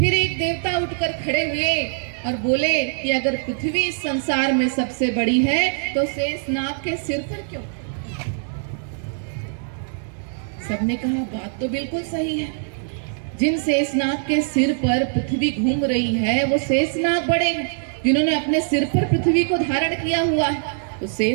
एक देवता उठकर खड़े हुए और बोले कि अगर पृथ्वी इस संसार में सबसे बड़ी है तो शेषनाग के सिर पर क्यों? सबने कहा, बात तो बिल्कुल सही है। जिन शेषनाग के सिर पर पृथ्वी घूम रही है वो शेषनाग बड़े हैं। जिन्होंने अपने सिर पर पृथ्वी को धारण किया हुआ है तो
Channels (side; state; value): left; silent; 64 dB below the other